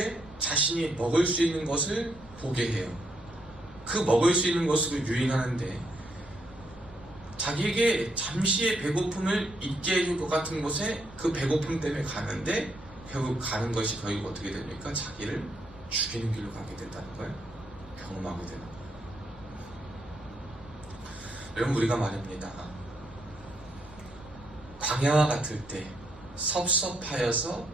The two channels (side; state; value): right; noise; rumble, 21 dB below the sound